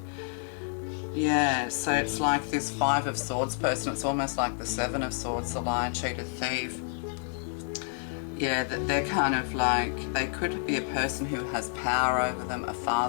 Yeah, so it's like this Five of Swords person, it's almost like the Seven of Swords, the lion, cheater, thief. yeah, they're kind of like, they could be a person who has power over them, a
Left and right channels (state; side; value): silent; right; 58 dB below the other